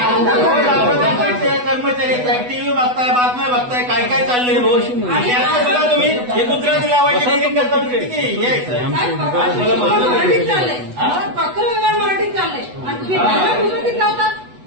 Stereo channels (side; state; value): left; late; 8.1 ms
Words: कर्मचारी टीव्ही बघताय, बातम्या बघताय, काय काय चाललंय रोज. आणि आता सुद्धा तुम्ही हे गुजराती लावायची डेअरिंग करता. किती मराठीत चाललंय, पत्रव्यवहार मराठीत चाललंय आणि तुम्ही गुजरातीत लावतात.